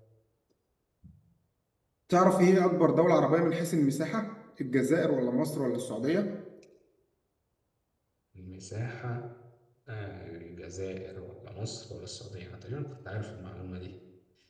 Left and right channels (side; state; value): both; identical; correlation 1.00